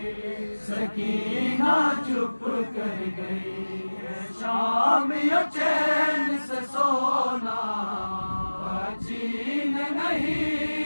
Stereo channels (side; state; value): both; inverted; correlation -1.00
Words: सकीना चुप कर गई। शाम यो चैन से सोना जीन नहीं